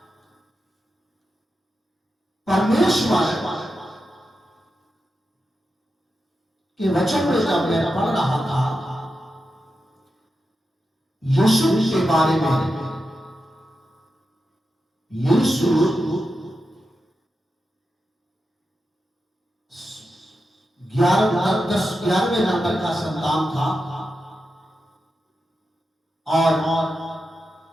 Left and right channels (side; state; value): both; normal; correlation 0.89